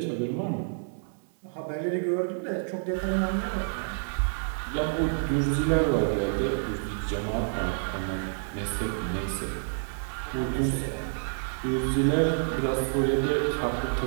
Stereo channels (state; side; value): silent; left; digital silence